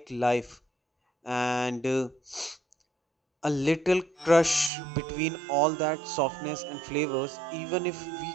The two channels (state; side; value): drops out; left; at 4.7 s